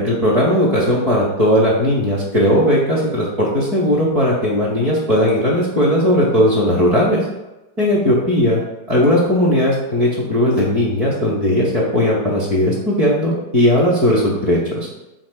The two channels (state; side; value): late; left; 4.6 ms